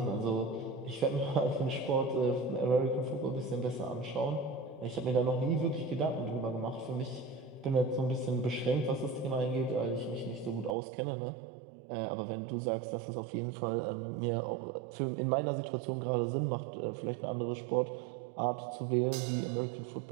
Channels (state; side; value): drops out; left; at 10.8 s